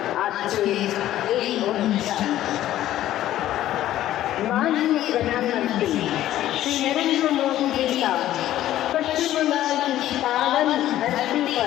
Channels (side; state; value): right; quieter; 13.3 dB